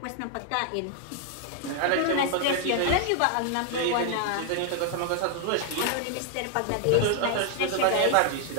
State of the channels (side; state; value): both; different; correlation 0.00